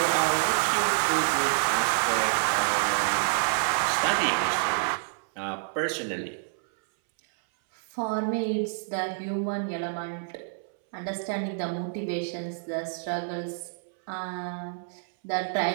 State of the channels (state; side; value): silent; left; 59 dB below the other